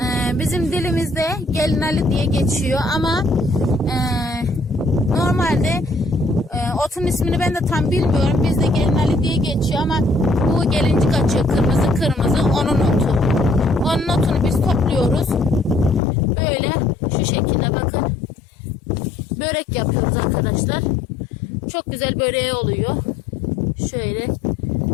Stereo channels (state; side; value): drops out; right; at 16.0 s